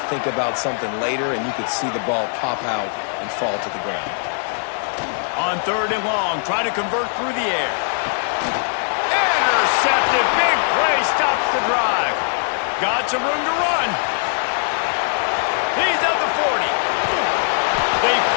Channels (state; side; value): silent; right; digital silence